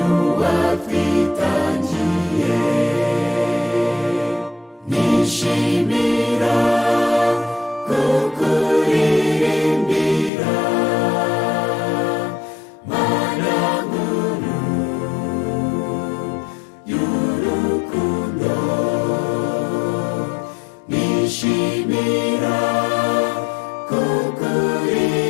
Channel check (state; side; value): drops out; right; at 10.3 s